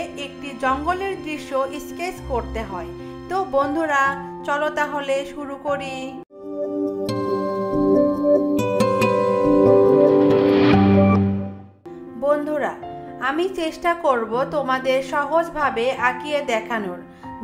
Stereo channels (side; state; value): both; identical; correlation 1.00